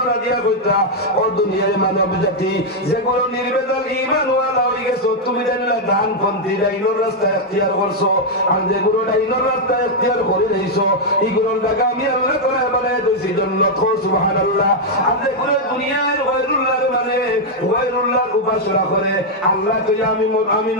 দিয়া কইতা ও দুনিয়ার মানব জাতি যেগুলো নির্বেজাল ঈমান ওয়ালা হয়ে গেছো, তুমি জানলা দান পন্থী ডাইনোর রাস্তা ইখতিয়ার করছো, আর যেগুলো ডাইনোর রাস্তা ইখতিয়ার করে রইছো এগুলোর জায়গা আমি আল্লাহ তাআলা বানায় দিয়েছি জান্নাত। সুবহানাল্লাহ। আর যেগুলো দুনিয়ার গয়রুল্লাহর মানে গয়রুল্লাহর উপাসনা করে, আল্লাহ তো আমি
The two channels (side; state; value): both; normal; correlation -0.01